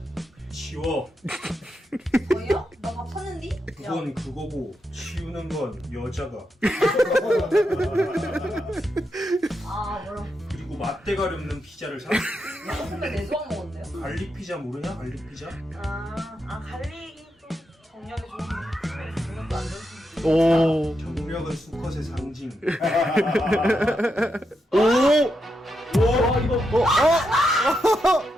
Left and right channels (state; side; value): normal; both; correlation 0.84